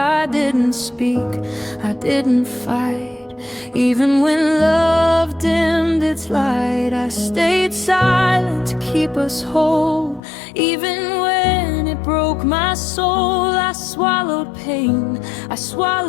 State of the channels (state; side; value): drops out; right; at 10.2 s